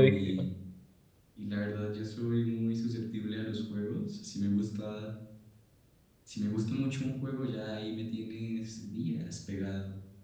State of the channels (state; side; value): identical; both; correlation 1.00